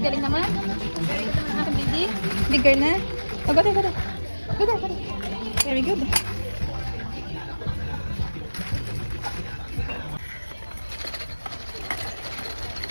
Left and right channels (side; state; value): both; inverted; correlation -1.00